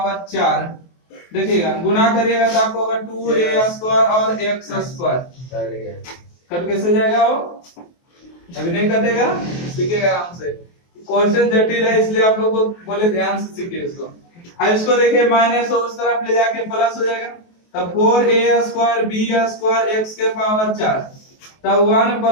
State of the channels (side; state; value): right; late; 23 ms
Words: 4। देखिएगा गुना करिएगा तो आपको होगा 2a स्क्वायर और x स्क्वायर। कट कैसे जाएगा? वो अभी नहीं कटेगा, सीखिएगा आराम से। क्वेश्चन जटिल है इसलिए आप लोग को बोले ध्यान से सीखिए इसको। अब इसको देखिए माइनस उस तरफ ले जाके प्लस हो जाएगा, तब 4a square b square x के पावर 4, तब 1